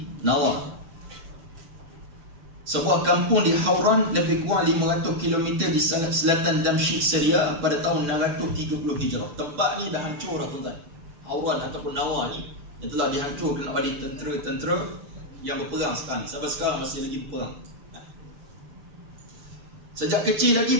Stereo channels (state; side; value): late; left; 6.9 ms